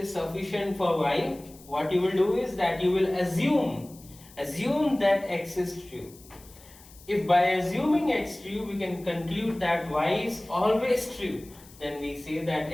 sufficient for Y, what you will do is that you will assume that X is true. If by assuming X true, we can conclude that Y is always true, then we say that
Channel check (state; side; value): noise; left; hiss, 23 dB below the sound